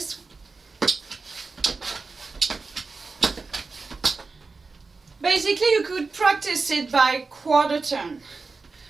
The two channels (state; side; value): quieter; left; 4.1 dB